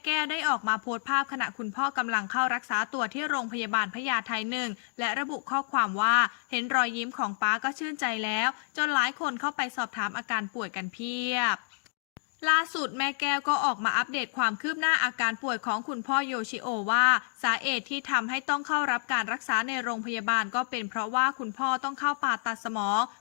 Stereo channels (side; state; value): right; silent; digital silence